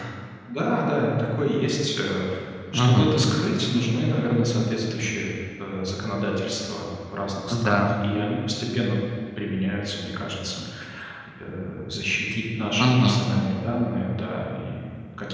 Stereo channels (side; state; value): both; identical; correlation 1.00